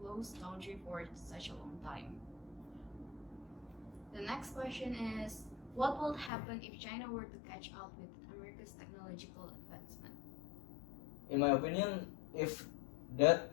closed country for such a long time. The next question is, what will happen if China were to catch up with America's technological advancement? In my opinion, if that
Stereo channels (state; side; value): drops out; right; at 6.3 s